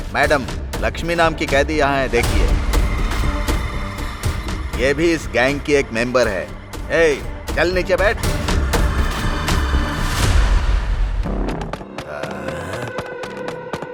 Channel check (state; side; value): identical; both; correlation 1.00